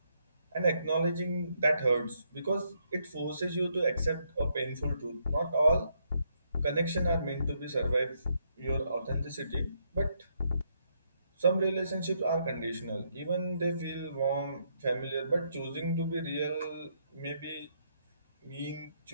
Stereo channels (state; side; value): inverted; both; correlation -0.75